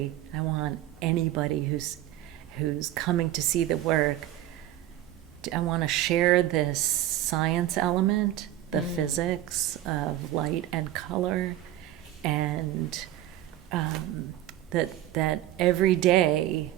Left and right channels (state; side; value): quieter; left; 13.4 dB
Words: I want anybody who's coming to see the work, I want to share this science element, the physics of light and color, and that every day